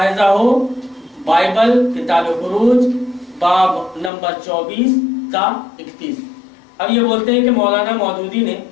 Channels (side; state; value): right; drops out; at 4.1 s